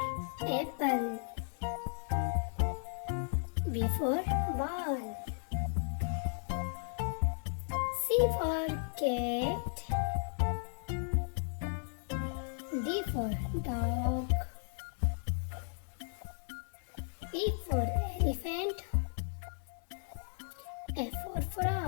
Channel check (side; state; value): right; silent; digital silence